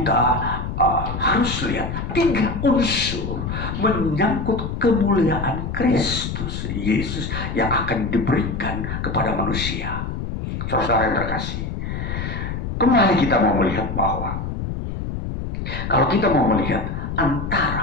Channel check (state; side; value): noise; left; rumble, 5 dB below the sound